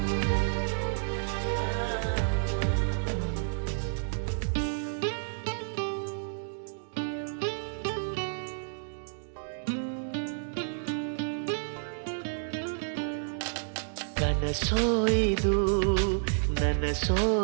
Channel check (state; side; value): silent; left; digital silence